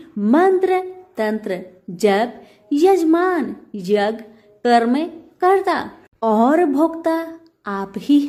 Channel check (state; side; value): identical; both; correlation 1.00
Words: मंत्र, तंत्र, जप, यजमान, यज्ञ, कर्म कर्ता और भोक्ता आप ही